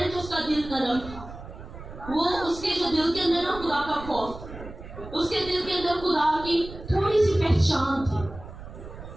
तो उसका दिल नरम था। वो उसके जो दिल के अंदर ना खुदा का खौफ था, उसके दिल के अंदर खुदा की थोड़ी सी पहचान थी।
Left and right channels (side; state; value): right; noise; rumble, 13 dB below the sound